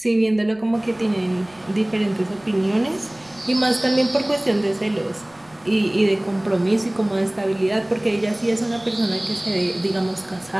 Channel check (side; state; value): right; noise; rumble, 29 dB below the sound